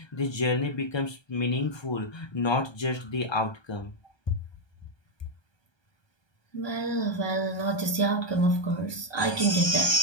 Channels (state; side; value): late; right; 1.3 ms